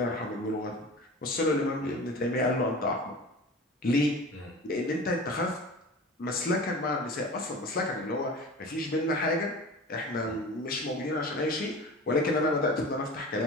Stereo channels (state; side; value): normal; both; correlation 0.36